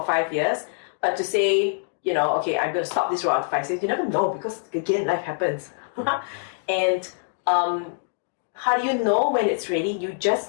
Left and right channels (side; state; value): right; silent; digital silence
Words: 5 years, but to say, okay, I'm gonna stop this road after 5 years, you never know, because again, life happens. And how do you know when it's ready? You